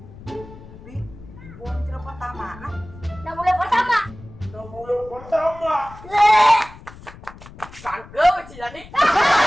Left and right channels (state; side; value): noise; left; rumble, 18 dB below the sound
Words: Tapi buang cerita pertama nah. Nah mulai pertama. Leh. Bangke sih jadi.